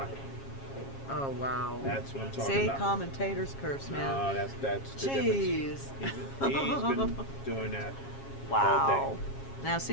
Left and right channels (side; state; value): right; late; 7.4 ms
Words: Oh, wow. That's what I'm talking See, about. commentator's curse, man. No, that's the Jeez. difference. He's been doing that all Wow. day. Now, see,